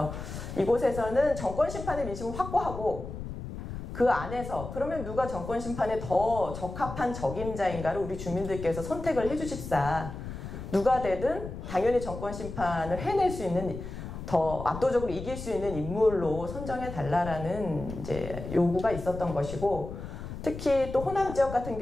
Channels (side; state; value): left; noise; rumble, 9 dB below the sound